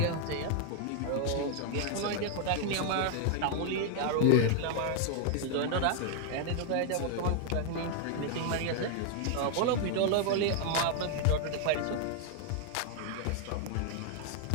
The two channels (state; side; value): different; both; correlation 0.00